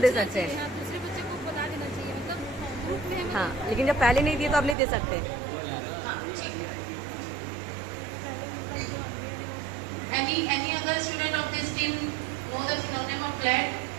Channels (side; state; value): left; drops out; at 4.8 s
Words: सकते हैं. हाँ, दूसरे बच्चे को बता देना चाहिए, मतलब ग्रुप में हाँ, लेकिन जब पहले नहीं दिए तो आप नहीं दे सकते. Any other student of this team know the synonym of glad?